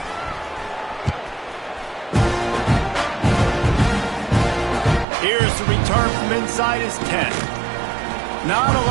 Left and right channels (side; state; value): left; drops out; at 5.1 s